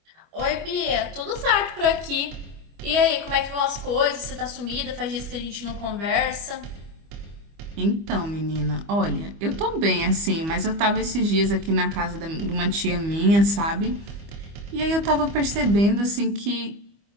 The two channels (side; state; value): left; late; 25 ms